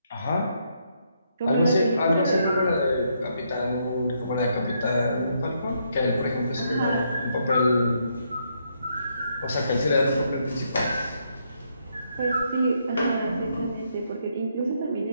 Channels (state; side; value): inverted; both; correlation -0.76